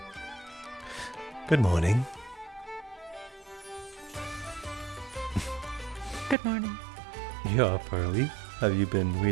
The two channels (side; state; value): left; drops out; at 6.4 s